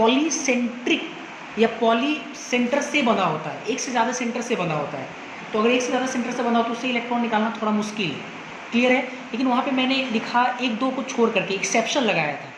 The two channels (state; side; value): identical; both; correlation 1.00